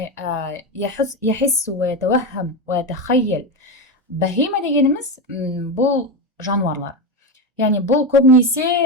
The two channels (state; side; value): normal; both; correlation 0.15